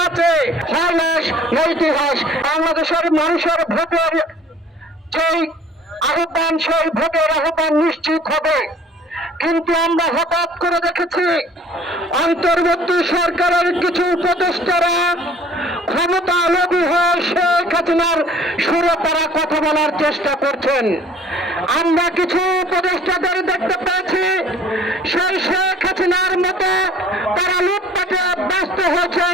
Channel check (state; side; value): normal; both; correlation 0.51